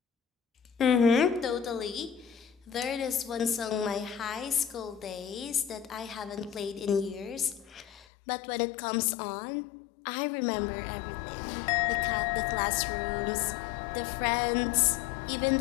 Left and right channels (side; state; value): right; drops out; at 8.1 s